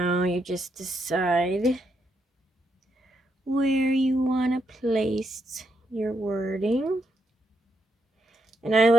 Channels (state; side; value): normal; both; correlation 0.79